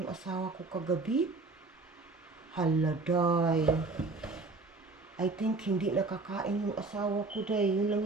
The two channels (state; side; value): quieter; left; 3.6 dB